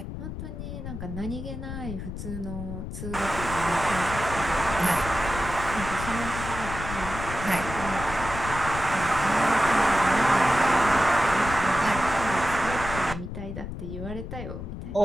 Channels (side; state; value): left; noise; rumble, 8 dB below the sound